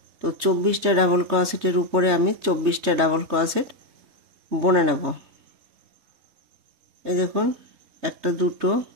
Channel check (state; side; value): late; left; 3.2 ms